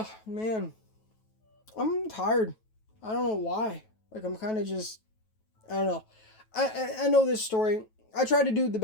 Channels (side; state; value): right; late; 9.2 ms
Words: man. I'm tired. I don't know why. Like, I'm kind of just, I don't know. I know this story. I try to do the